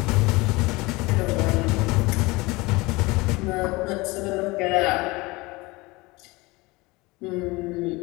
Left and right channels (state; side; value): quieter; right; 23.1 dB